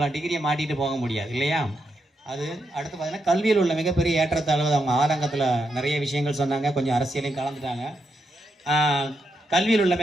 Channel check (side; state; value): both; normal; correlation 0.82